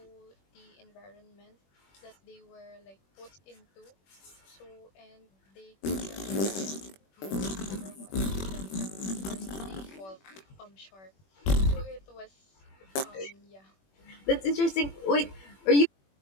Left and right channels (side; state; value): right; late; 21 ms